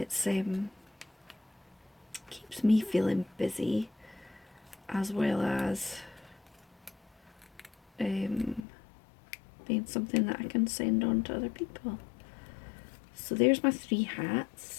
keeps me feeling busy, as well as being something that I can send on to other people. So there's my 3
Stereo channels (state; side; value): drops out; right; at 8.6 s